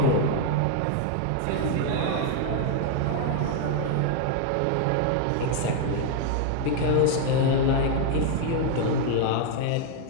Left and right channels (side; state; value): both; different; correlation 0.00